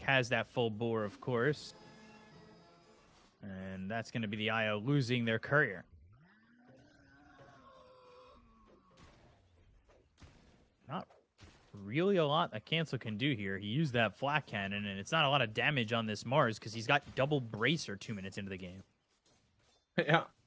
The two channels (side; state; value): both; identical; correlation 1.00